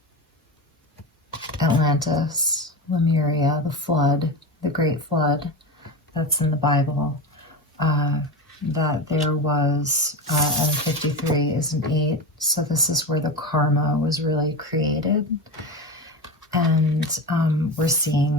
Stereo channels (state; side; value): normal; both; correlation 0.22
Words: Atlantis, Lemuria, the flood, the great flood that's in the Bible, that there was, and 53 is an 8, so this is where the karma was really created. And we're